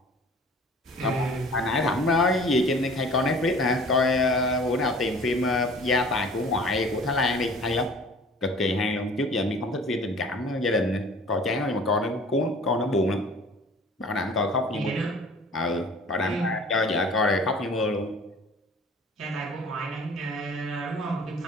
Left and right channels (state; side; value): normal; both; correlation 0.47